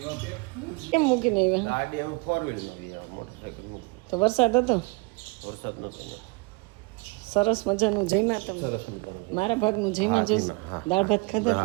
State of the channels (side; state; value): left; quieter; 27.4 dB